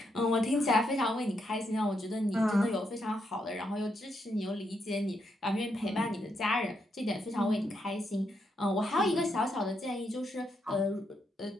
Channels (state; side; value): normal; both; correlation 0.79